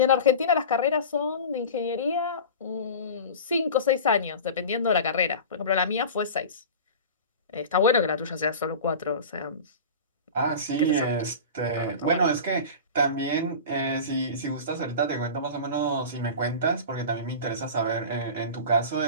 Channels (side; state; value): both; inverted; correlation -0.32